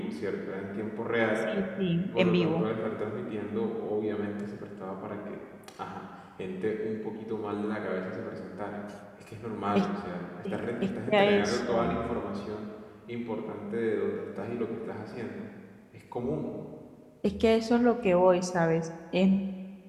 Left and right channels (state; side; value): identical; both; correlation 1.00